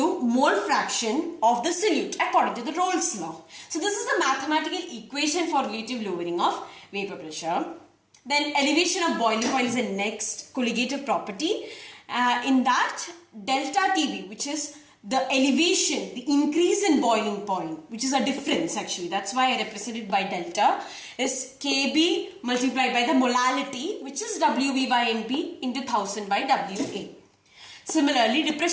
mole fraction of the solute according to the Rolle's law. So this is the mathematical equation for relative lowering of vapor pressure. Then elevation of boiling point is the next colligative property. In that, delta TB, which is the elevation, the increase in boiling point, which is a difference actually. That's why I represent it by delta, is Kb multiplied by the molality, which is Wb by Np into 1000 by Wa. Similarly,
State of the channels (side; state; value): both; identical; correlation 1.00